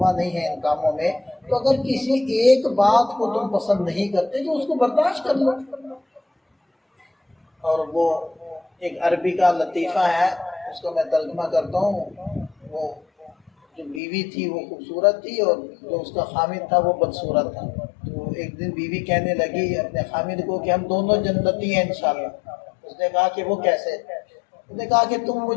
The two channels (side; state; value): right; drops out; at 14.0 s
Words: نہیں ہے ان کاموں میں، تو اگر کسی ایک بات کو تم پسند نہیں کرتے تو اس کو برداشت کر لو۔ اور وہ ایک عربی کا لطیفہ ہے، اس کو میں ترجمہ کرتا ہوں۔ وہ جو بیوی تھی وہ خوبصورت تھی اور جو اس کا خامد تھا وہ بدصورت تھا۔ تو ایک دن بیوی کہنے لگی اپنے خامد کو کہ ہم دونوں جنتی ہیں انشاءاللہ۔ اس نے کہا کہ وہ کیسے؟ اس نے کہا کہ تم